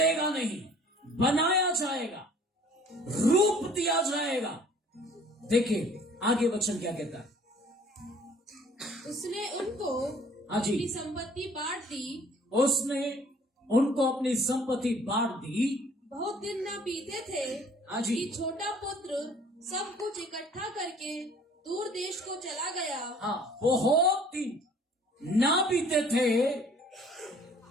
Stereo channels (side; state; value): both; normal; correlation 0.54